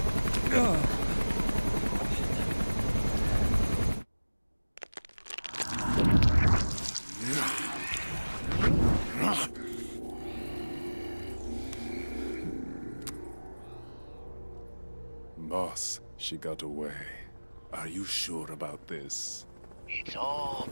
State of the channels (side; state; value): both; inverted; correlation -1.00